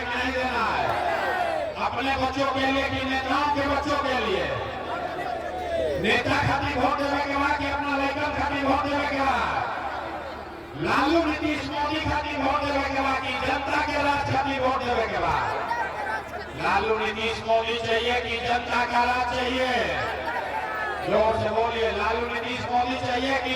कि नहीं देना है? अपने बच्चों के लिए कि नेताओं के बच्चों के लिए? नेता खातिर वोट देवे के बाद कि अपना लड़कन खातिर वोट देवे के बाद? लालू नीतीश मोदी खातिर वोट देवे के बाद कि जनता के राज खातिर वोट देवे के बाद? लालू नीतीश मोदी चाहिए कि जनता का राज चाहिए? जोर से बोलिए, लालू नीतीश मोदी चाहिए कि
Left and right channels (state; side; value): identical; both; correlation 1.00